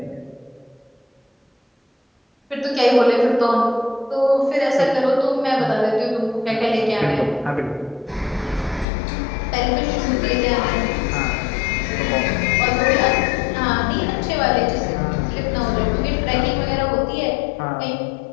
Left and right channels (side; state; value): right; drops out; at 8.8 s